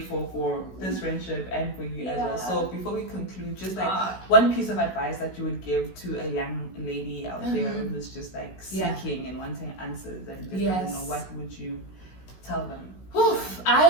for this friendship and for you as well. So before we conclude, just like one piece of advice that you would give to a young lady out there who's just like seeking and wanting answers and just doesn't know, what would you tell them? Oof,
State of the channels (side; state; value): right; late; 16 ms